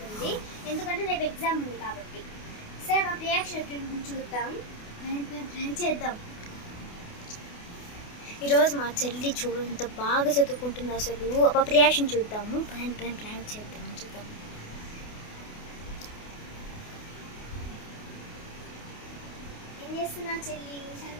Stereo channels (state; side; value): late; right; 28 ms